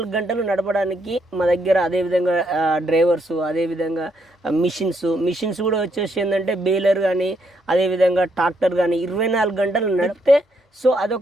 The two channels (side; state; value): both; normal; correlation 0.75